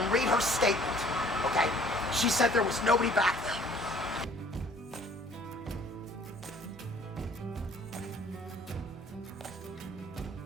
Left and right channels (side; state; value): both; normal; correlation 0.55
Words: read her statement. Okay? She said there was nobody back there.